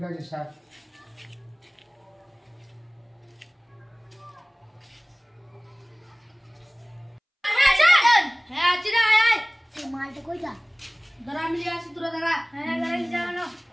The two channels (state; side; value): identical; both; correlation 1.00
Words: আছে স্যার। হ্যাঁ আছি রে, আয় আয়। সেই মালটা কইটা দাঁড়া, আমি নিয়ে আসি, তোরা দাঁড়া। হ্যাঁ গাড়ি যাও।